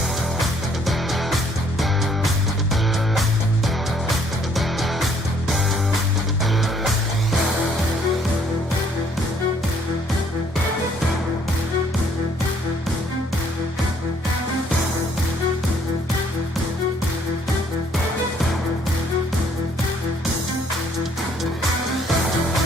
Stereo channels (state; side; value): normal; both; correlation 0.64